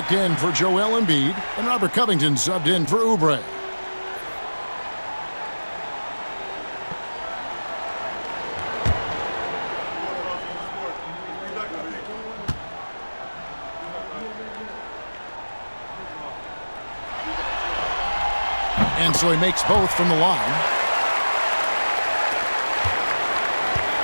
in for Joel Embiid, and Robert Covington subbed in for Oubre. And so he makes both from the line.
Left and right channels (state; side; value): inverted; both; correlation -1.00